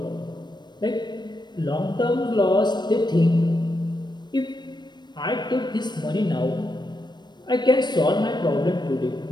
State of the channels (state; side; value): late; right; 0.21 ms